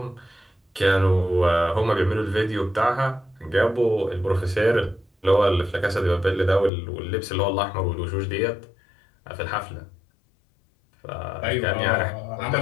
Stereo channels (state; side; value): drops out; right; at 6.7 s